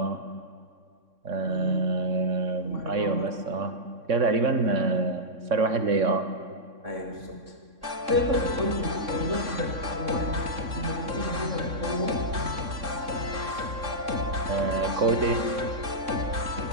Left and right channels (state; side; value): late; left; 3.6 ms